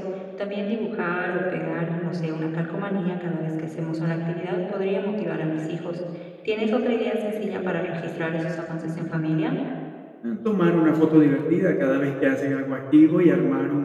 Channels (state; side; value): identical; both; correlation 1.00